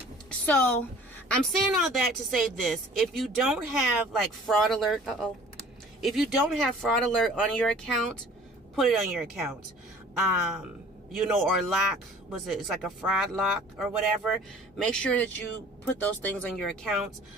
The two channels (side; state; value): both; normal; correlation 0.49